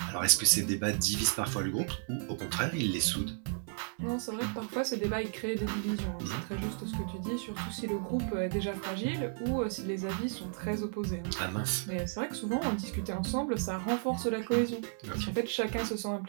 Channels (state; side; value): silent; left; 55 dB below the other